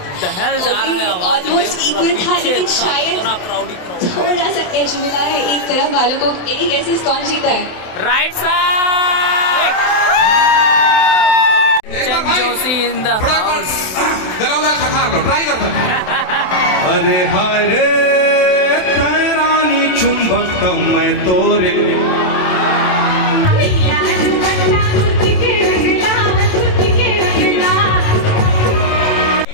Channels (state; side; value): late; right; 27 ms